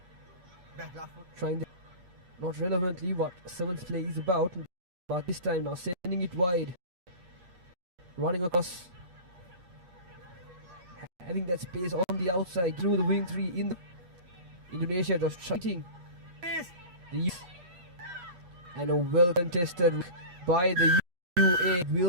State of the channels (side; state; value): left; late; 8.4 ms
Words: trying not relevantly what sevens play is about, but this time now sending it wide, running across, having that space on the outside through the wing 3 in the Indonesia just fighting the and a well contested by the UAE